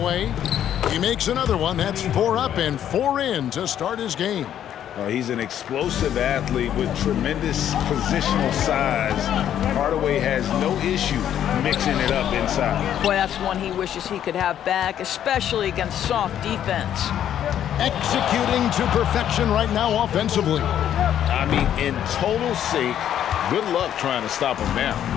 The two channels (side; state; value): right; quieter; 10.4 dB